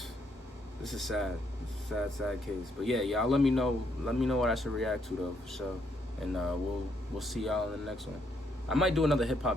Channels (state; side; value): normal; both; correlation 0.74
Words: sad. Sad case. But yeah, y'all let me know what I should react to though, for sure. And we'll see y'all in the next one. I might do another hip